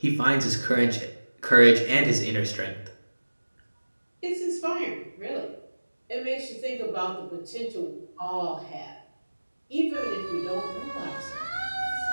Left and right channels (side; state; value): both; inverted; correlation -1.00